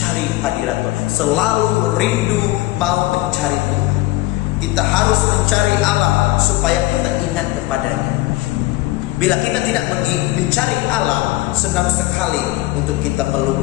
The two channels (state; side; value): quieter; right; 18.2 dB